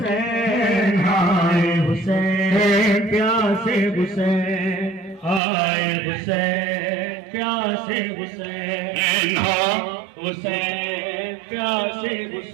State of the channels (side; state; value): left; drops out; at 5.4 s